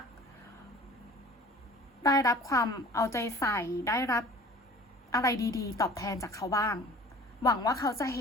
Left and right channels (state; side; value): normal; both; correlation 0.45